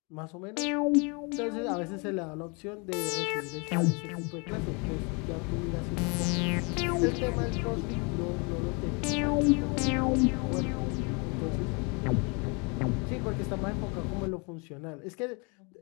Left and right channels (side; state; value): right; quieter; 32.0 dB